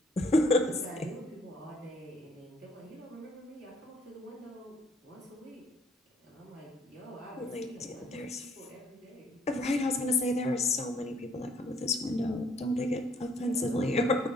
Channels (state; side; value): normal; both; correlation 0.63